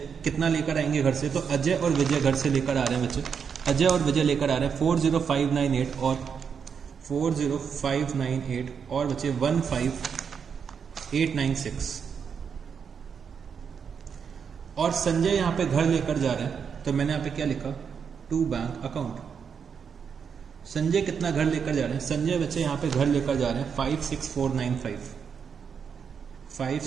कितना लेकर आएंगे घर से, तो अजय और विजय घर से लेकर आ रहे हैं बच्चे, अजय और विजय लेकर आ रहे हैं 40,598 और 40,598 और बच्चे 15,896। और संजय यहाँ पे घर लेकर जा रहे हैं, तो मैंने यहाँ पे क्या लिखा टू बैंक अकाउंट। संजय कितना घर लेकर जा रहे हैं, संजय बच्चे यहाँ पे घर लेकर जा रहे हैं 56,495,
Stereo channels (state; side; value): quieter; left; 6.7 dB